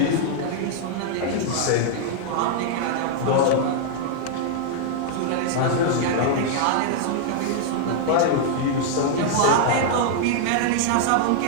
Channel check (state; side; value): different; both; correlation -0.01